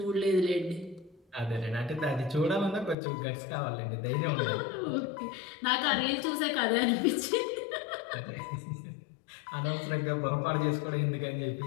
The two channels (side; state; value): right; drops out; at 3.0 s